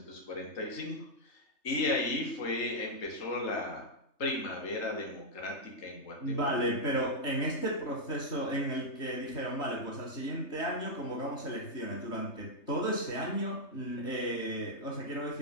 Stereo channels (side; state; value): right; late; 3.3 ms